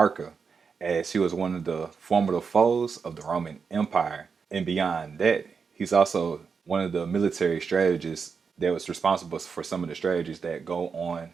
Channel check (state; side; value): quieter; left; 5.7 dB